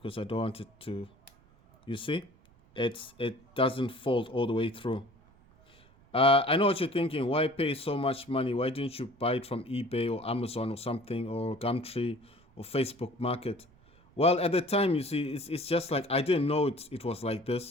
I don't want it to. You see, it doesn't fold all the way through. I know what you're thinking. Why pay so much money? Why didn't you buy it from eBay or Amazon or something, or Gumtree or Facebook Market? Well, at the time, you see, it's just like I didn't know it was like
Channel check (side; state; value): right; noise; rumble, 29 dB below the sound